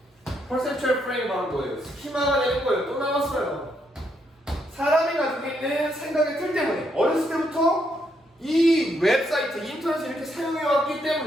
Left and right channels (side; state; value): both; normal; correlation 0.76